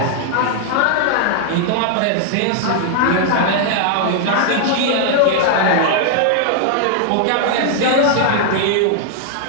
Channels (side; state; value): both; different; correlation -0.01